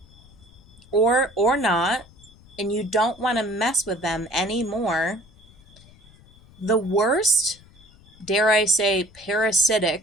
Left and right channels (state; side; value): noise; left; rumble, 25 dB below the sound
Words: or not, and you don't want to mess with them anymore. The worst, dare I say,